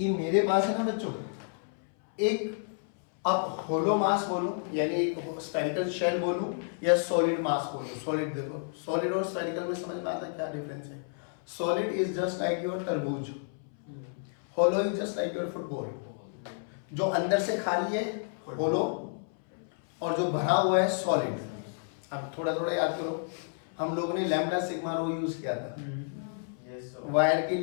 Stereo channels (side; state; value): right; silent; 58 dB below the other